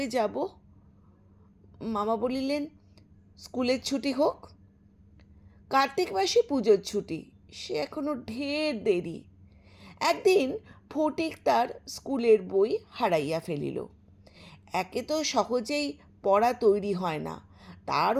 যাব? মামা বলিলেন, স্কুলের ছুটি হোক। কার্তিক মাসে পুজোর ছুটি, সে এখনো ঢের দেরি। একদিন ফটিক তার স্কুলের বই হারাইয়া ফেলিল। একে তো সহজেই পড়া তৈরি হয় না, তার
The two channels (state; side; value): identical; both; correlation 1.00